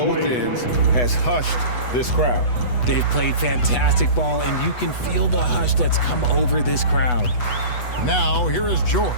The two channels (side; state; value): right; late; 8.1 ms